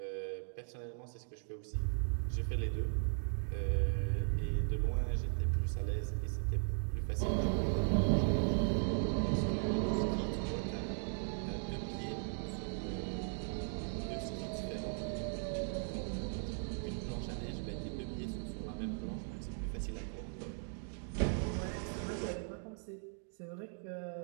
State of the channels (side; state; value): left; silent; 52 dB below the other